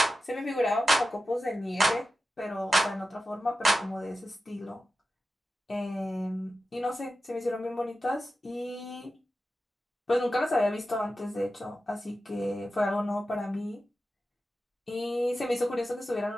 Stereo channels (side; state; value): both; normal; correlation 0.92